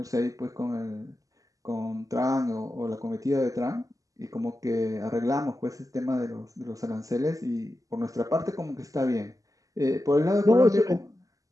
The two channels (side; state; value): left; late; 0.16 ms